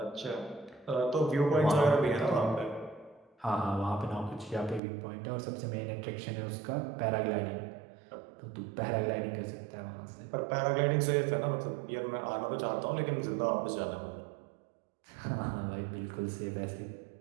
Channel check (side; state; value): left; drops out; at 4.8 s